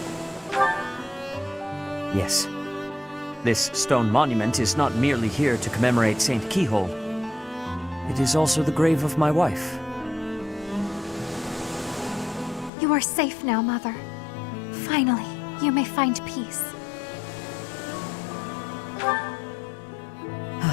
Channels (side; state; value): right; drops out; at 12.7 s